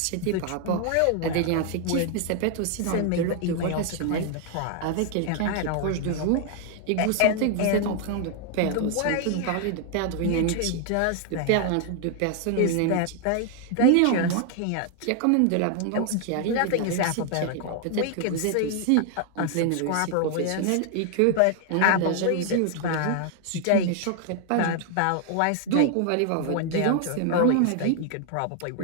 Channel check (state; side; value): different; both; correlation 0.00